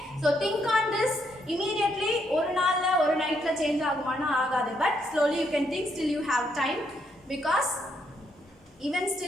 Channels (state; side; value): normal; both; correlation 0.75